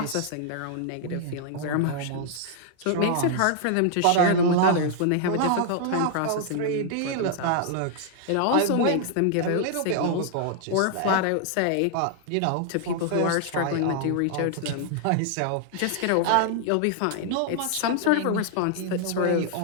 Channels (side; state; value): both; different; correlation -0.01